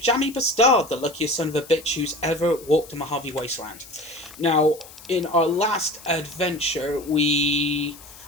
B'Stard, the luckiest son of a bitch who's ever walked the Mojave Wasteland. Now, in our last adventure, we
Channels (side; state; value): left; noise; hiss, 19 dB below the sound